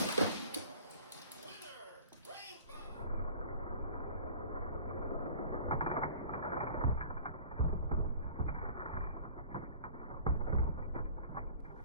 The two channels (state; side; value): inverted; both; correlation -0.45